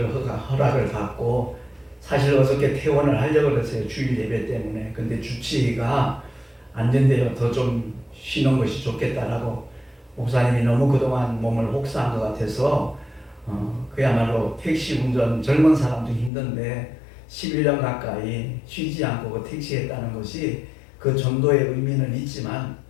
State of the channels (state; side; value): drops out; right; at 16.3 s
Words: 허락을 받고 사실 어저께 퇴원을 하려고 그랬어요. 주일 예배 때문에. 근데 주치의가 안 된대요. 더 좀 쉬는 것이 좋겠다라고. 목사님이 너무 그동안 몸을 혹사한 것 같아서 그야말로 택시 운전 젊은 사람도 힘든데 11년 가까이 쉬지 않고 그 택시했다는 것이 그 정도의 의미는 있지만